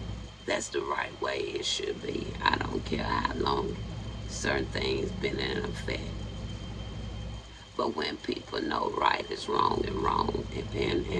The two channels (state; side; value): identical; both; correlation 1.00